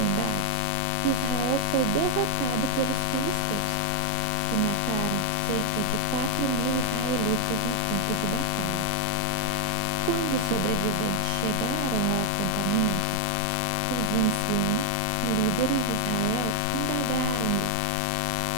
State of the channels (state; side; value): different; both; correlation 0.00